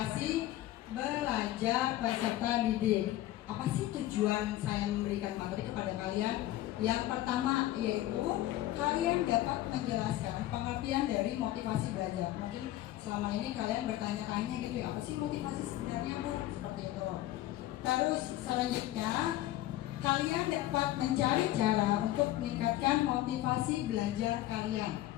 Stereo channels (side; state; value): right; quieter; 14.8 dB